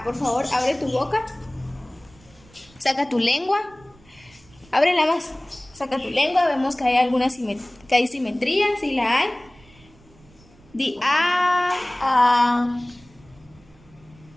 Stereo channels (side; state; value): right; noise; rumble, 27 dB below the sound